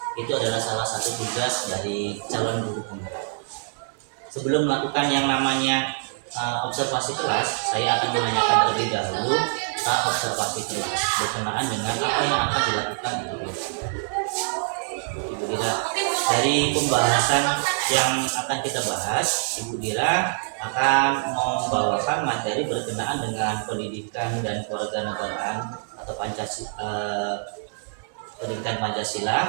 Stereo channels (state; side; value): silent; left; digital silence